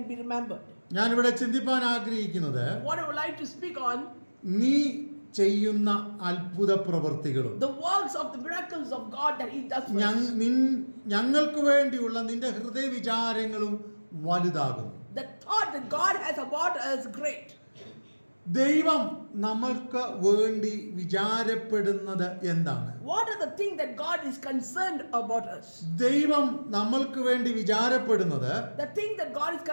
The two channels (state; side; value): inverted; both; correlation -1.00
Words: be remembered. ഞാനിവിടെ ചിന്തിപ്പാൻ ആഗ്രഹിക്കുന്നത്, What I would like to speak on, നീ ചെയ്യുന്ന അത്ഭുത പ്രവൃത്തികളും the works of the miracles of God that He does for us. ഞങ്ങൾക്ക് വേണ്ടിയുള്ള നിന്റെ ഹൃദയ വിചാരങ്ങളും വലുതാകുന്നു. The thought that God has about us is great. ദൈവം നമ്മൾക്ക് വേണ്ടി വിചാരപ്പെടുന്നത് എന്താണ്? What are the things that God is concerned about us? ദൈവം നമ്മൾക്ക് വേണ്ടി വിചാരപ്പെടുന്നത്, The thing that God is